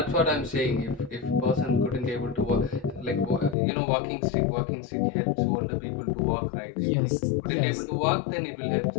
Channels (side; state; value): right; drops out; at 3.6 s